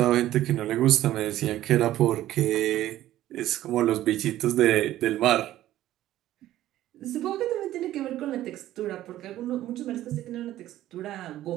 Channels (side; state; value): left; quieter; 13.9 dB